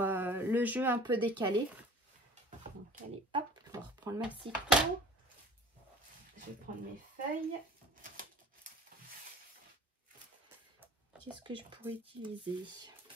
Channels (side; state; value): both; normal; correlation 0.46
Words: jeu un peu décalé. Donc allez hop, on va reprendre ma ciseau. Je vais prendre mes feuilles. Qu'est-ce que je pourrais utiliser?